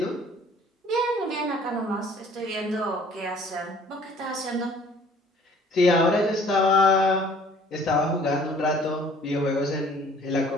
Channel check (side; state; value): both; normal; correlation 0.54